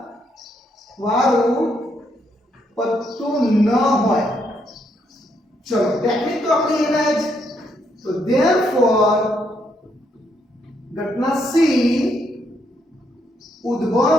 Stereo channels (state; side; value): normal; both; correlation 0.75